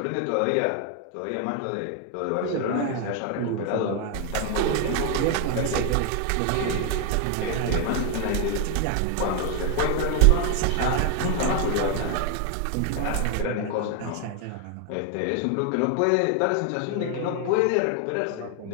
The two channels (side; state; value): both; different; correlation 0.00